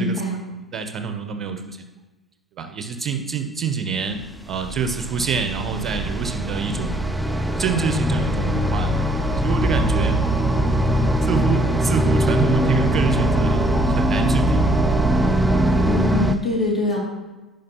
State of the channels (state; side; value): normal; both; correlation 0.65